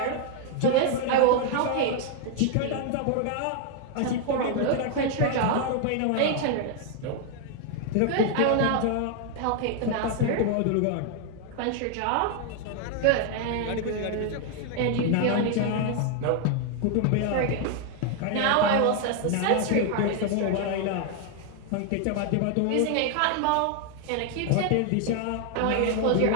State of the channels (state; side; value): different; both; correlation 0.00